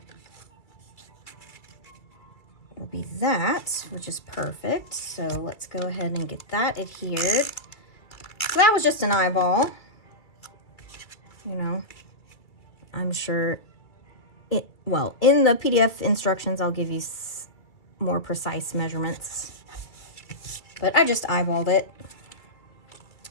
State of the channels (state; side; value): late; right; 2.3 ms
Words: will be that, which is perfect. So let's go ahead and get that adhered. So that was just an eyeball. You know, I'm sure well, in the PDF instructions, I'll give you more precise measurements. But I just eyeballed it.